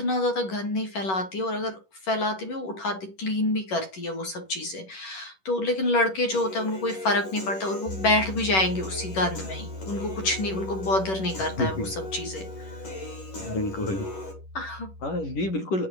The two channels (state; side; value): late; right; 11 ms